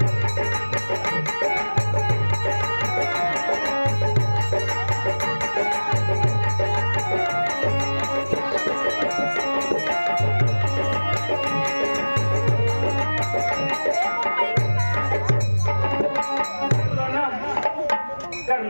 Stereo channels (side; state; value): both; inverted; correlation -1.00